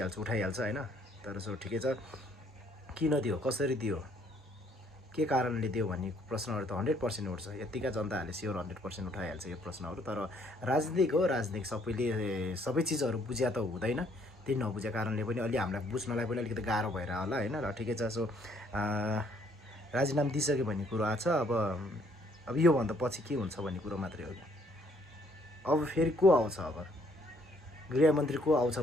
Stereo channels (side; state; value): both; normal; correlation 0.65